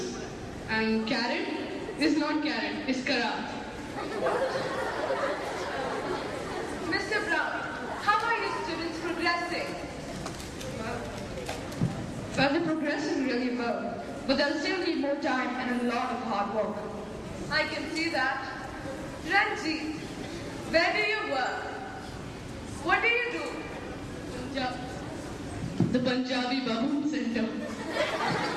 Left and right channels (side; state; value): both; identical; correlation 1.00